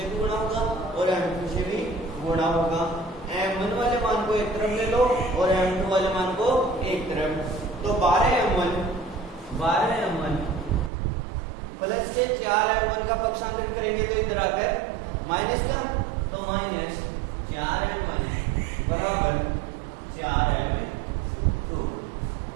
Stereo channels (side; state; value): left; drops out; at 10.9 s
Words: भी गुणा होगा और m2 से भी गुणा होगा। m1 वाले मान को एक तरफ ले लो और m2 वाले मान को एक तरफ, तो 12m1 प्लस के 4m1 का पक्षांतर करेंगे तो इधर आकर माइनस का, तो माइनस 4m1 बराबर 4m2।